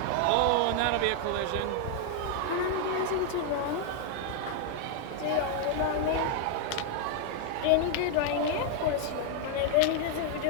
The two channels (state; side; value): different; both; correlation 0.00